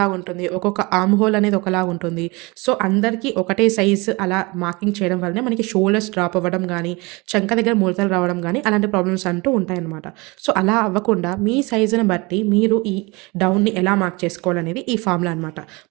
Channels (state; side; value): quieter; left; 25.7 dB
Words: ఉంటుంది, ఒక్కొక్క ఆర్మ్ హోల్ అనేది ఒకలాగా ఉంటుంది. సో అందరికీ ఒకటే సైజు అలా మార్కింగ్ చేయడం వల్లనే మనకి షోల్డర్స్ డ్రాప్ అవ్వడం కానీ, చంక దగ్గర ముడతలు రావడం కానీ అలాంటి ప్రాబ్లమ్స్ అంటూ ఉంటాయన్నమాట. సో అలా అవ్వకుండా మీ సైజుని బట్టి మీరు ఈ డౌన్ని ఎలా మార్క్ చేసుకోవాలనేది ఈ ఫార్ములా అనమాట.